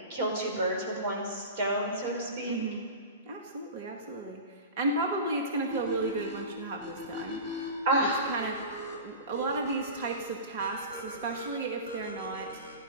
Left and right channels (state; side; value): inverted; both; correlation -0.31